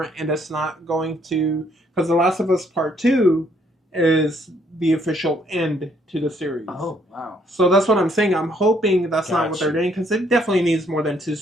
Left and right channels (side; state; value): both; normal; correlation 0.68